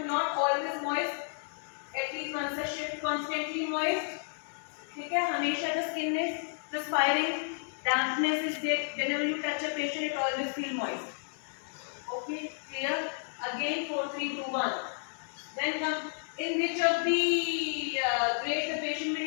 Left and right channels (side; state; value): right; silent; 57 dB below the other